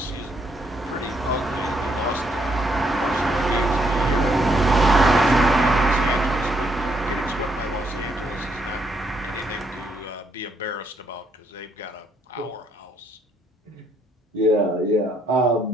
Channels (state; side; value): normal; both; correlation 0.73